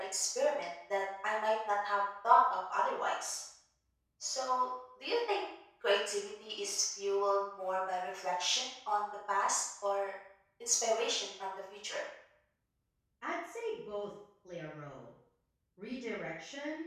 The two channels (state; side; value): identical; both; correlation 1.00